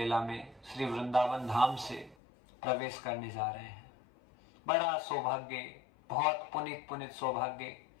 में श्री वृंदावन धाम से प्रवेश करने जा रहे हैं। बड़ा सौभाग्य, बहुत पुनित सौभाग्य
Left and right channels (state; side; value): drops out; right; at 2.1 s